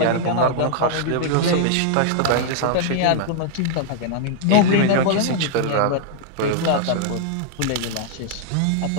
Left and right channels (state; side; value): different; both; correlation -0.01